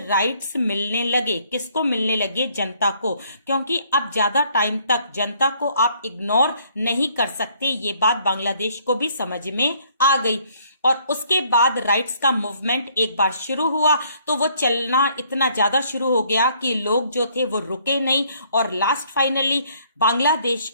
मिलने लगे, किसको मिलने लगे, जनता को, क्योंकि अब ज्यादा टाइम तक जनता को आप इग्नोर नहीं कर सकते, ये बात बांग्लादेश को भी समझ में आ गई। और उसके बाद राइट्स का मूवमेंट एक बार शुरू हुआ तो वो चलना इतना ज्यादा शुरू हो गया कि लोग जो थे वो रुके नहीं, और लास्ट फाइनली बांग्लादेश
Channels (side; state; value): both; inverted; correlation -0.64